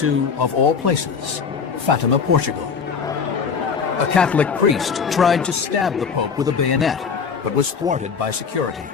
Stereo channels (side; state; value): right; quieter; 5.9 dB